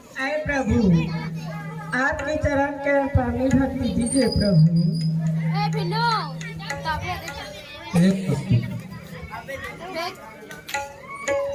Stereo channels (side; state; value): both; identical; correlation 1.00